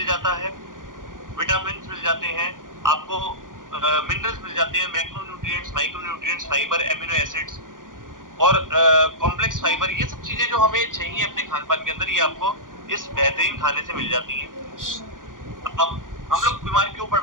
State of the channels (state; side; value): late; left; 0.89 ms